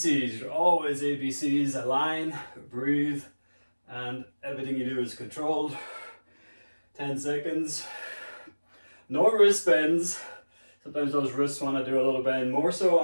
you're always ABCs. Align, breathe, and everything you do is controlled. 10 seconds. No wrist bends. Sometimes those wrists want to do a little bend, more so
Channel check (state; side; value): inverted; both; correlation -1.00